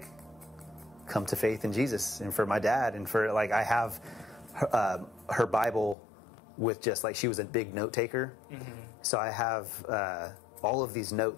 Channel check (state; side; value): drops out; right; at 6.0 s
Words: come to faith in Jesus, and for my dad, and for like I have her Bible with just like she was a big note taker. So I have all of these